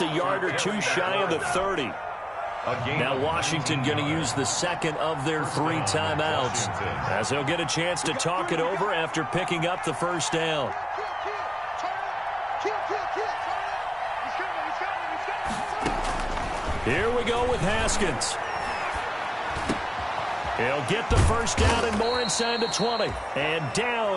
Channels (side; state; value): both; identical; correlation 1.00